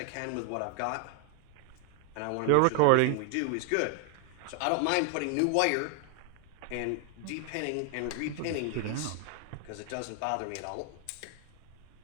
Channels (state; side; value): different; both; correlation 0.00